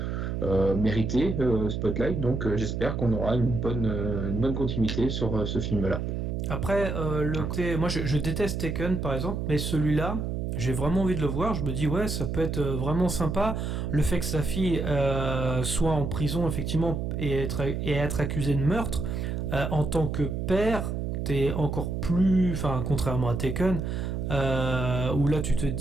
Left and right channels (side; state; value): right; noise; hum, 2 dB below the sound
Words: mérité, Spotlight. Donc j'espère qu'on aura une bonne continuité sur ce film-là. Après, moi je déteste Taken par exemple, mais celui-là, j'ai vraiment envie de le voir. Je me dis ouais, ça peut être vraiment sympa. Le fait que sa fille soit en prison effectivement et être accusée de meurtre, en tant que père, t'es encore plus, contrairement à Taken, où là tu te